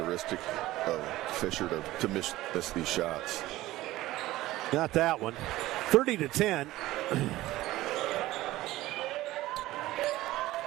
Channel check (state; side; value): quieter; left; 16.7 dB